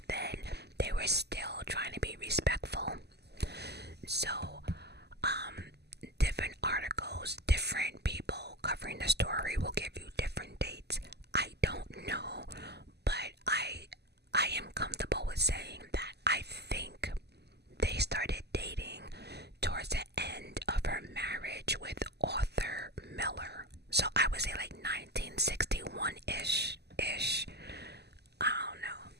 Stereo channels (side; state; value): left; late; 0.49 ms